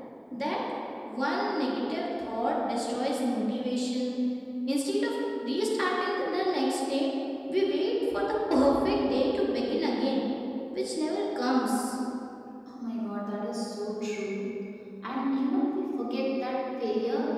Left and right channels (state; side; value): identical; both; correlation 1.00